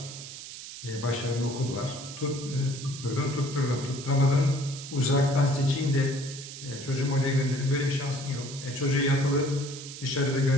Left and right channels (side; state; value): right; noise; hiss, 12 dB below the sound